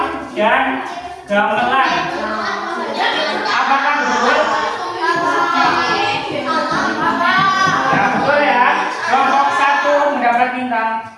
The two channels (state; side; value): identical; both; correlation 1.00